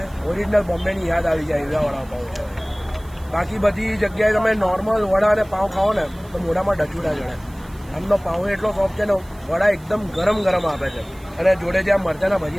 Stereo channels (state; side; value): noise; right; hiss, 26 dB below the sound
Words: ઓરિજિનલ બોમ્બેની યાદ આવી જાય એવા વડાપાઉં છે. બાકી બધી જગ્યાએ તમે નોર્મલ વડા અને પાઉં ખાઓ ને તો મોઢામાં ડચું ના જડે. આમનો પાઉં એટલો સોફ્ટ છે ને, વડા એકદમ ગરમ આપે છે અને જોડે જે આ મરચાના